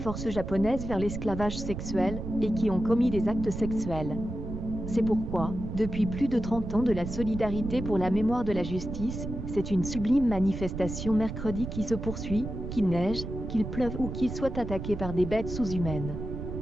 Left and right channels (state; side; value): noise; right; rumble, 7 dB below the sound